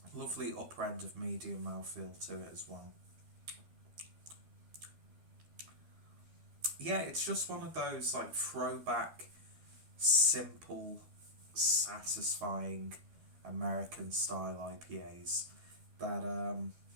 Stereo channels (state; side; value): late; left; 12 ms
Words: Lovely upper end of medium mouthfeel to it as well. Yeah, it's just one of those like throwback, simple, satisfying American style IPAs that